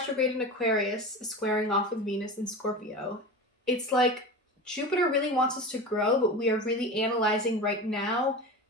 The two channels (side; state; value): both; normal; correlation 0.29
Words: in Aquarius is squaring off with Venus in Scorpio. It's like Jupiter really wants us to grow, but we are really analyzing right now